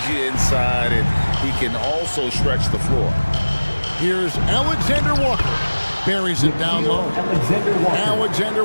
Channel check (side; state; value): both; inverted; correlation -1.00